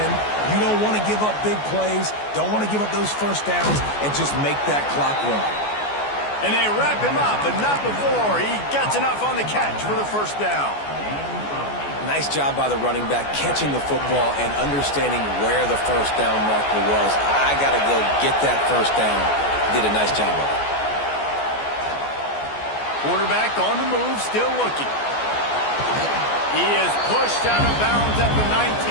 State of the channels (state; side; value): late; right; 14 ms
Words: You don't want to give up big plays. Don't want to give up those first downs and just make that clock run. And they wrap him up, but not before. He gets enough on the catch for the first down. Nice job by the running back catching the football and understanding where the first down marker was. I got to go get that first down. Did a nice job of it. Quarterback on the move, still looking. He is pushed out of bounds at the